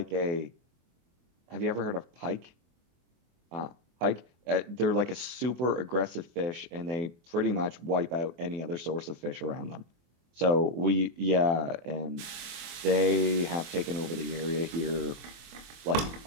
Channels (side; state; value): left; late; 24 ms